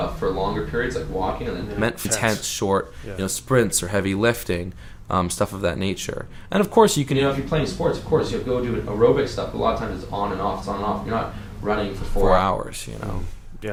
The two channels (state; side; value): identical; both; correlation 1.00